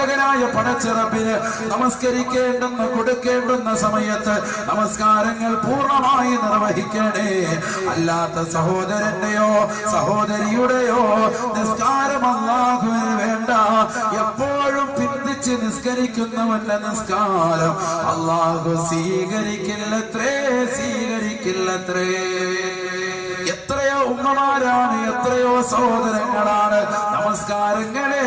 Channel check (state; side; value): identical; both; correlation 1.00